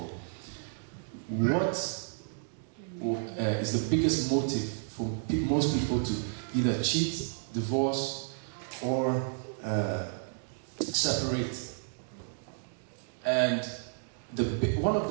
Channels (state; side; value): silent; left; digital silence